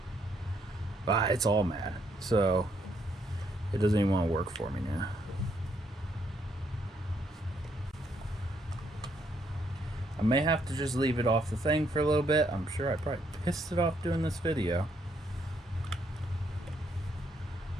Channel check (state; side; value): normal; both; correlation 0.73